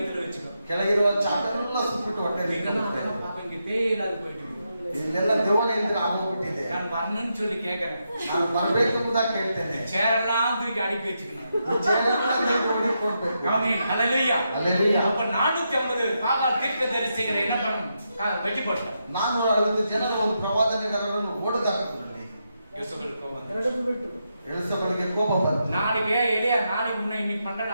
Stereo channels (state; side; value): inverted; both; correlation -0.84